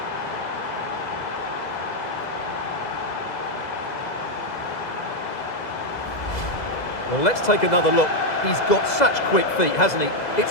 Well, let's take another look. He's got such quick feet, hasn't he?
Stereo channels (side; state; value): right; late; 2.0 ms